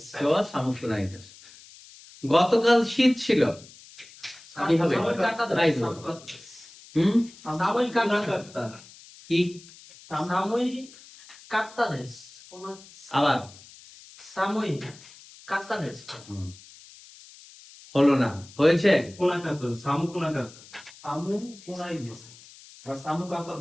কেউ সামুকুনাই দেশ। গতকাল শীত ছিল, কি হবে? কি আবার হলো না, হয়েছে?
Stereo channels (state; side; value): noise; left; hiss, 21 dB below the sound